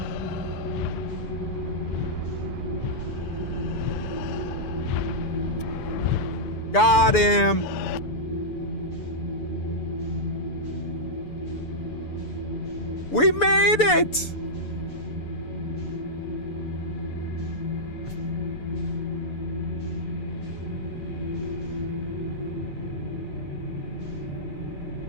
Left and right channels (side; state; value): right; late; 6.9 ms